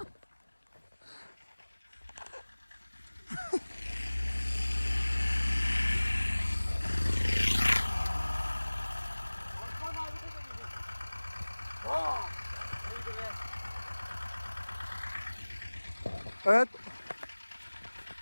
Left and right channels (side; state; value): both; inverted; correlation -1.00